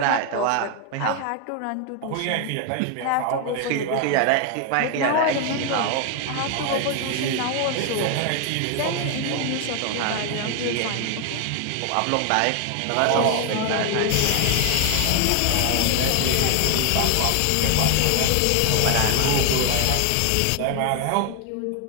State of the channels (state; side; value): different; both; correlation 0.01